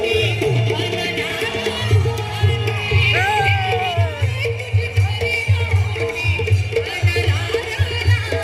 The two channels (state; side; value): identical; both; correlation 1.00